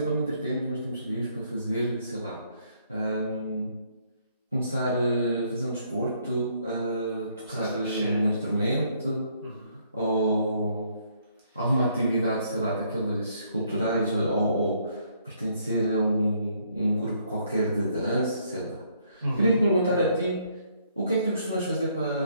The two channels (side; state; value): both; inverted; correlation -0.68